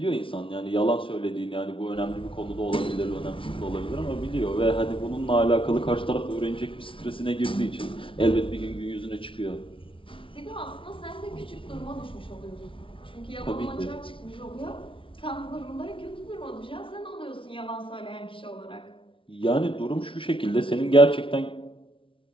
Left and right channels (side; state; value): right; late; 0.25 ms